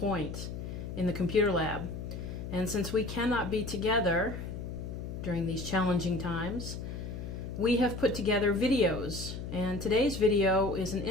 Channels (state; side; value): noise; left; hum, 7 dB below the sound